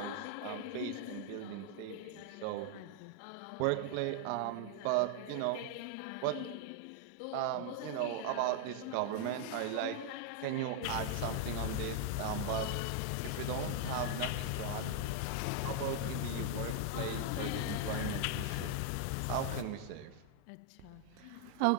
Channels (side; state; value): both; different; correlation 0.00